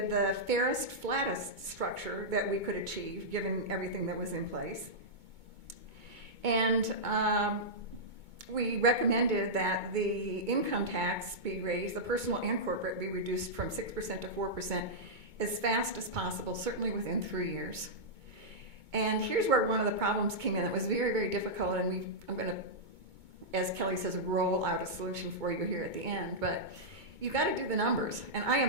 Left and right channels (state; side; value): late; left; 2.2 ms